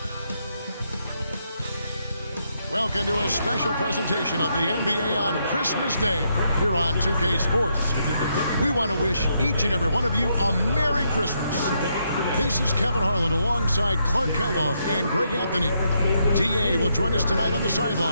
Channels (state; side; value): inverted; both; correlation -0.78